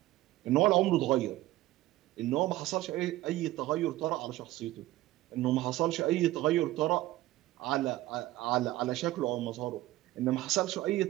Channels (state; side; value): quieter; left; 16.5 dB